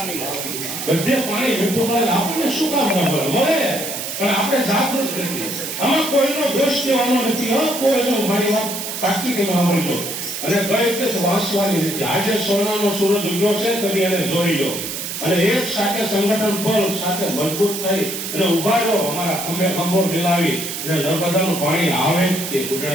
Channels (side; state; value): right; noise; hiss, 6 dB below the sound